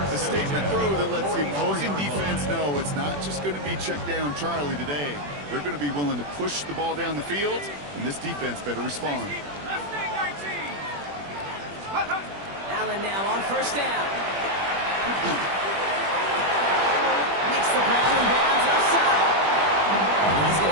A statement throw that lets the opposing defense know it's not just going to be check down Charlie today. They're going to be willing to push the ball down the field, and this defense better respond. Allen now on first down. Makes the grab and bounds outside. He's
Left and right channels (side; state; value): left; late; 21 ms